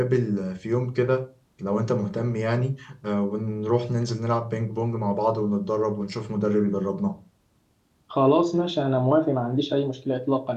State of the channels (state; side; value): identical; both; correlation 1.00